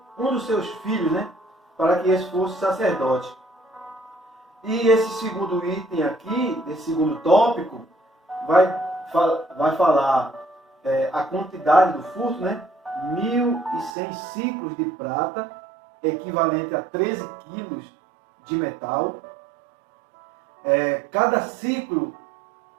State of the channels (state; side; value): drops out; left; at 13.9 s